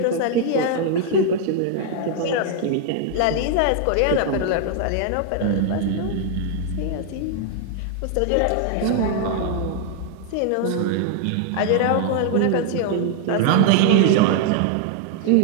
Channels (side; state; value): both; different; correlation 0.00